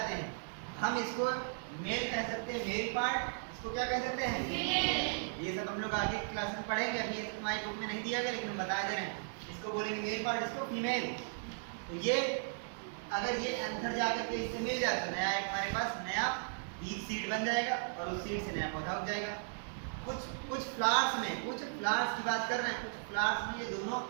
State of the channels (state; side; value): silent; left; digital silence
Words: हैं। हम इसको मेल कह सकते हैं, मेल पार्ट। इसको क्या कह सकते हैं? ये सब हम लोग आगे क्लास में पढ़ेंगे, अभी ये सब हमारी बुक में नहीं दिया गया, लेकिन हम बता दे रहे हैं। इसको बोलेंगे मेल पार्ट, इसको फीमेल। तो ये अगर ये एंथर जाकर के इससे मिल जाता है, नया एक हमारे पास नया बीज सीड बन जाएगा और उस सीड से नया पौधा उग जाएगा। कुछ फ्लावर्स में, कुछ फ्लावर्स की बात कर रहे हैं, कुछ फ्लावर्स में ये दोनों